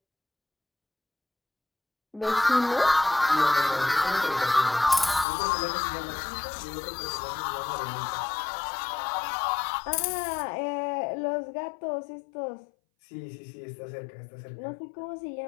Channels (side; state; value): right; drops out; at 5.2 s